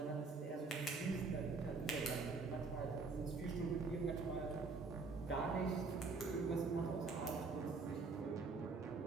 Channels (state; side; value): quieter; left; 4.2 dB